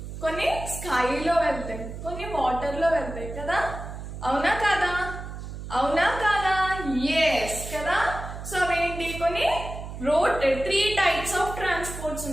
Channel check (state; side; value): noise; right; hum, 9 dB below the sound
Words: కొన్ని స్కైలో వెళ్తాయి, కొన్ని వాటర్లో వెళ్తాయి కదా. అవునా కాదా? అవునా కాదా? ఎస్ కదా. సో అవేంటి? కొన్ని రోడ్ 3 types of transports